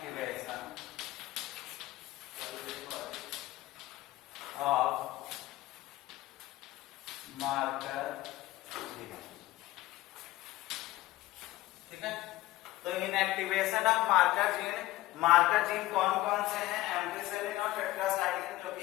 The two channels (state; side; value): quieter; right; 17.5 dB